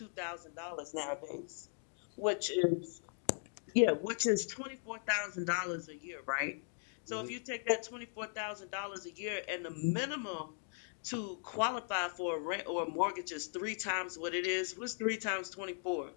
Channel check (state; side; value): silent; right; 52 dB below the other